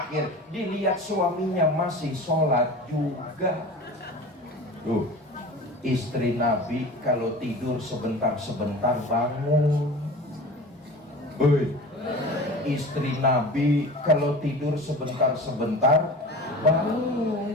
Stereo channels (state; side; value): normal; both; correlation 0.37